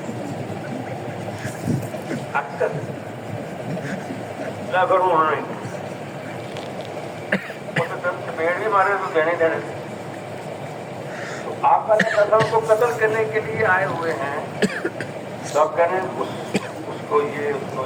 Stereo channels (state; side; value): identical; both; correlation 1.00